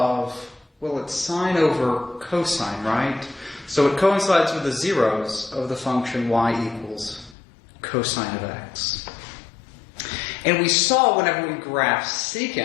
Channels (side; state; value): right; drops out; at 7.4 s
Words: well, it's sine over cosine, right? So it coincides with the zeros of the function y equals cosine of x. And we saw whenever we graphed